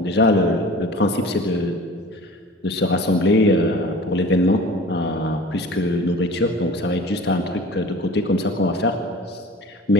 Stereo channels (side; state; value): both; normal; correlation 0.41